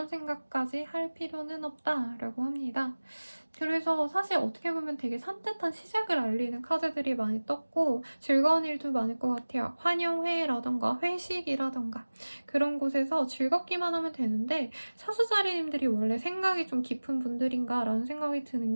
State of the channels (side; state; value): both; inverted; correlation -1.00